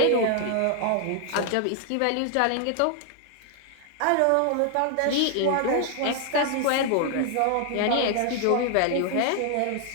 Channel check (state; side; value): different; both; correlation 0.00